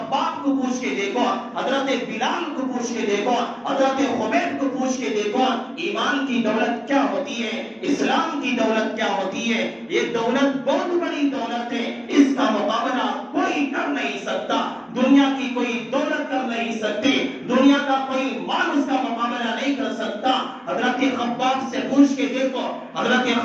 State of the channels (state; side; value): identical; both; correlation 1.00